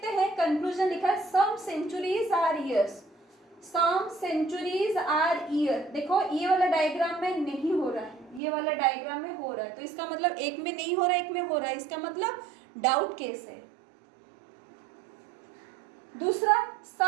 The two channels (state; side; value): drops out; left; at 8.4 s